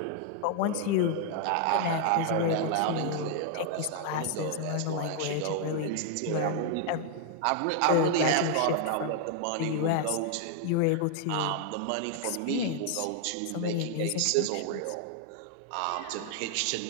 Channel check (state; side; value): different; both; correlation 0.00